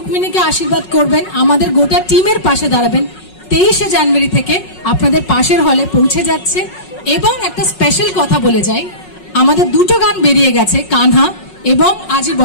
আশীর্বাদ করবেন, আমাদের গোটা টিমের পাশে দাঁড়াবেন। 23শে জানুয়ারি থেকে আপনাদের পাশের হলে পৌঁছে যাচ্ছে। এবং একটা স্পেশাল কথা বলে যাই, আমাদের দুটো গান বেরিয়ে গেছে, কানহা এবং আজই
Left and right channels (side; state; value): right; late; 5.4 ms